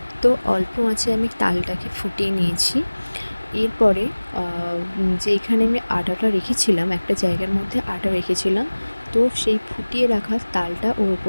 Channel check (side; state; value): both; inverted; correlation -1.00